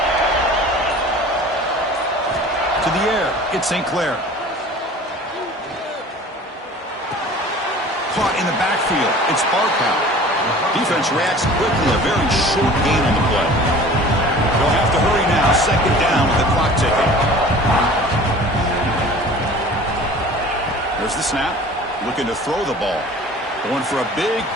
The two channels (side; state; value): both; normal; correlation 0.44